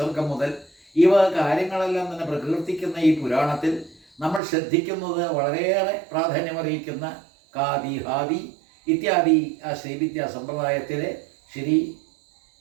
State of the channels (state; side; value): drops out; left; at 4.4 s